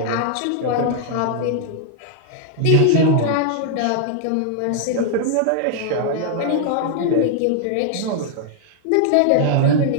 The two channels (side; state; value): both; different; correlation 0.00